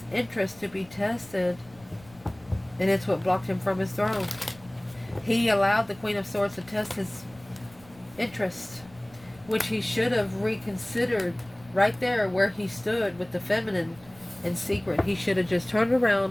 interest to be tested, and it's what blocked him from his throne. He allowed the Queen of Swords to test his interest, which he should have reconsidered right there where he stood with the feminine in secret. He should have just turned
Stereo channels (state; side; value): noise; left; rumble, 24 dB below the sound